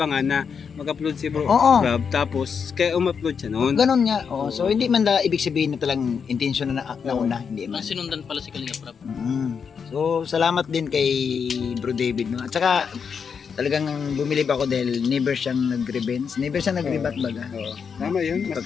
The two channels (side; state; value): right; quieter; 6.4 dB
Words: na mag-upload si bro Oo. Rob, tapos kaya um-upload siya noon. Ganon nga. Oh, so hindi man ibig sabihin na talang intention na nauna, hindi man. Mas sinundan pala si Kalinga Prab. So salamat din kay Bro David no. At saka talagang bumilib ako dahil never siyang nag-revenge, never siyang nag-rebat baga. Oo. Tama yun.